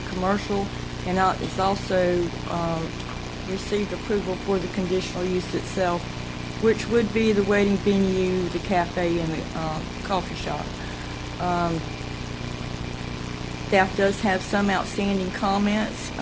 commercial, and it's also received approval for the conditional use itself, which would be the wedding venue, the cafe, and the coffee shop. Staff does have some outstanding comments.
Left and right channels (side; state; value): both; identical; correlation 1.00